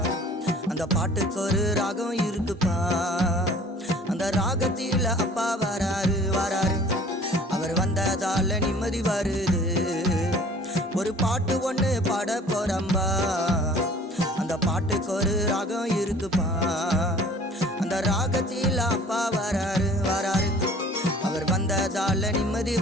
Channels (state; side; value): normal; both; correlation 0.50